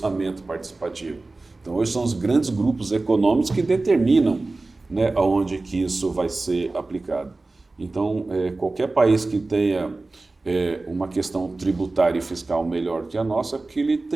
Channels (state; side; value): quieter; left; 3.3 dB